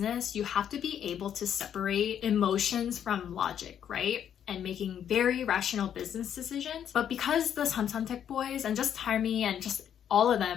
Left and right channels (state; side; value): quieter; right; 9.2 dB